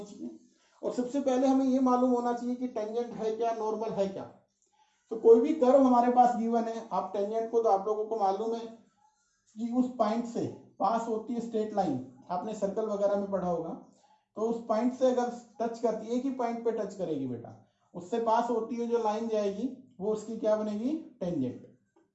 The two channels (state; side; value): identical; both; correlation 1.00